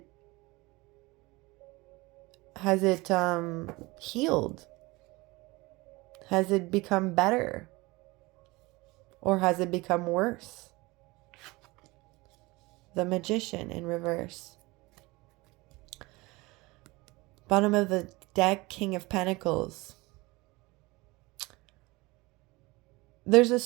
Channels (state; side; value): quieter; left; 22.8 dB